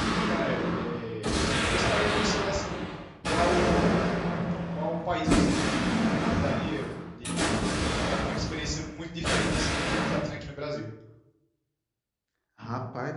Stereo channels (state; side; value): identical; both; correlation 1.00